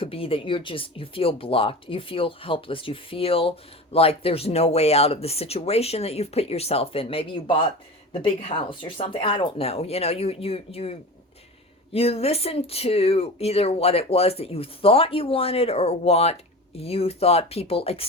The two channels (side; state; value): both; normal; correlation 0.31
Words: be that you feel blocked, you feel helpless, you feel like there's no way out of the situation that you've put yourself in. Maybe you bought the big house or something. I don't know. You listen to either what it was that you thought you wanted, or what you thought people